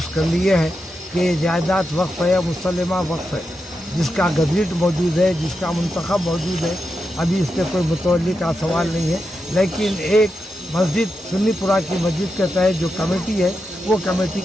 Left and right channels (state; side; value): normal; both; correlation 0.87